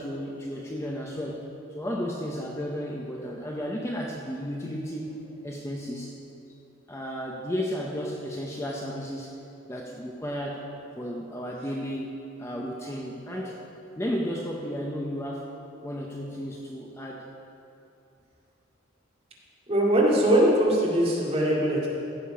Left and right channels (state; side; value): normal; both; correlation 0.55